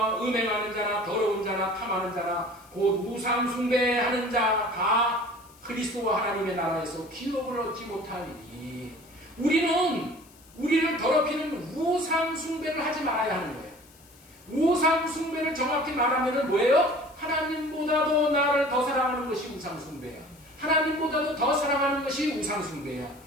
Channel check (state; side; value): noise; left; hiss, 26 dB below the sound